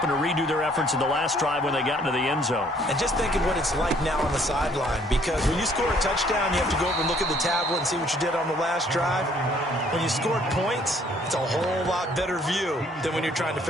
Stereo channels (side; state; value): both; normal; correlation 0.62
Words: to redo their efforts in the last drive when they got into the end zone. And just think of what it's like now on the sideline, because when you score a touchdown, you have to go over and look at the tablet and see what you did on the last drive. When you scored points, it's a whole lot better view than when you're trying to